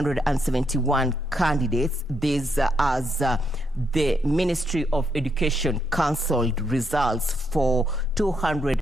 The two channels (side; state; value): both; normal; correlation 0.77